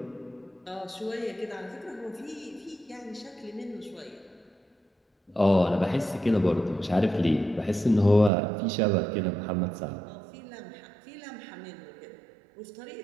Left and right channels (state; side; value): drops out; left; at 8.3 s